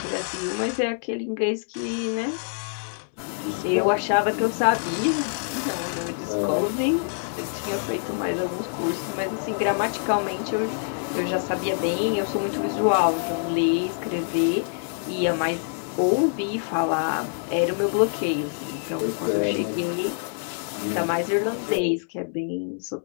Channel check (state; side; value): silent; right; 61 dB below the other